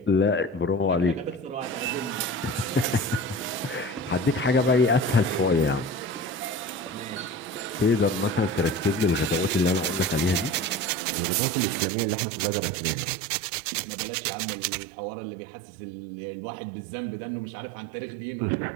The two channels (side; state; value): left; drops out; at 10.9 s